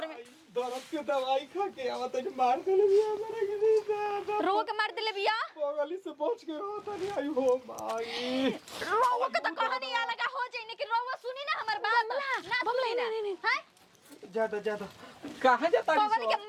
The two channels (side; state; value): both; identical; correlation 1.00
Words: में दर्द के दवाई खा के आवत है मार देले बिया हमरा के दादा रो के मार देले बिया बगली से बच के रहत नहीं आई हो माई रोवा के तो कहानी आ लगा हो जाई कि रोवा सुनी ना हमर बात ना सुनी ना हैं ज्यादा कहां जाता पगली के